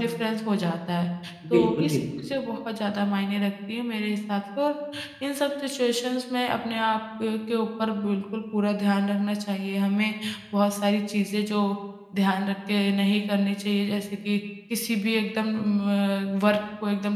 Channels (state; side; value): identical; both; correlation 1.00